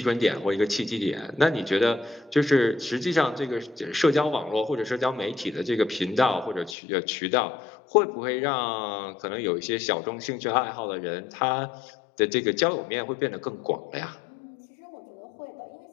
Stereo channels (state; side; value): drops out; right; at 6.8 s